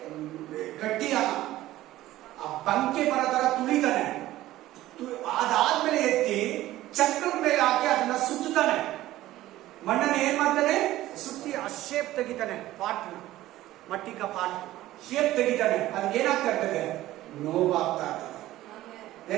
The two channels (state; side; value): quieter; left; 15.4 dB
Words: गट्टी ಬಂಕೆ ಬರೋ ತರ ತುಳಿತಾನೆ. ಅದಾದ್ಮೇಲೆ ಎತ್ತಿ ಚಕ್ರದ ಮೇಲೆ ಹಾಕಿ ಅದನ್ನ ಸುತ್ತಾನೆ. ಮಣ್ಣನ್ನು ಏನ್ ಮಾಡ್ತಾನೆ? ಸುತ್ತಿ ಆ ಶೇಪ್ ತೆಗಿತಾನೆ. ಪಾಟ್ ಮಟ್ಟಿ ಕಾ ಪಾಟ್ ಶೇಪ್ ತೆಗಿತಾನೆ. ಅದಕ್ಕೆ ಏನಾಗ್ತಾ ಇರ್ತದೆ? ನೋವಾಗ್ತಾ ಇರ್ತದೆ.